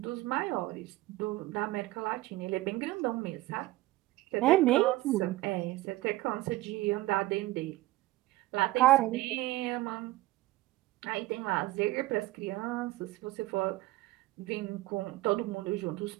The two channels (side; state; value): left; quieter; 18.1 dB